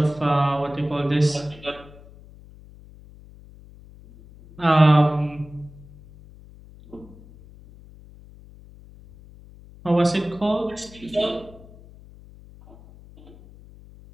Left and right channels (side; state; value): left; noise; hum, 22 dB below the sound